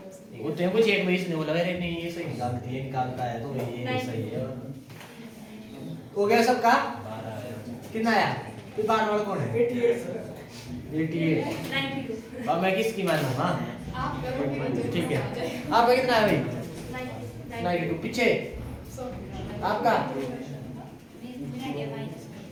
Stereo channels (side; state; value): both; identical; correlation 1.00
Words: वो तेरे को चेक में इसने बोला अरे नहीं ये सही निकालती है, निकालता है तो ये नहीं सही है। हो गया सबका? कितना आया? फिर बार वाला कौन है? 88 92 अब मैं किसकी मानूं? हाँ आप ठीक है। आपका कितना है भाई? 92। पीछे आपका